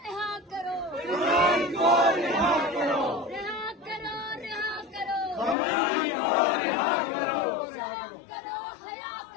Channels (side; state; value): right; drops out; at 5.6 s